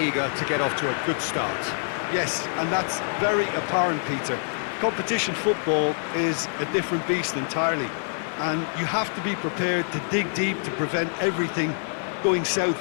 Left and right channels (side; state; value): right; silent; digital silence